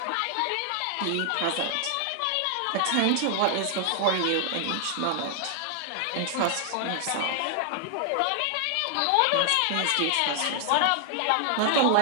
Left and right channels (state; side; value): different; both; correlation 0.00